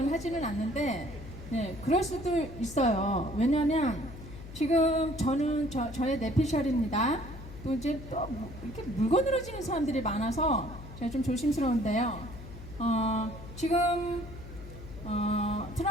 하지는 않는데, 네, 그럴 수도 있어요. 왜냐하면 지금 저는 저의 내피셜입니다. 또 이제 또 이렇게 물건으로 지는 사람들이 많아서 제가 좀 조심스러운데요. 지금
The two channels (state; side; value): noise; left; hum, 13 dB below the sound